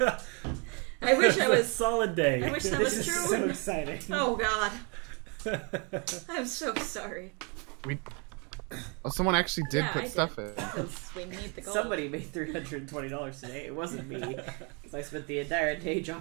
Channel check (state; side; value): quieter; left; 33.8 dB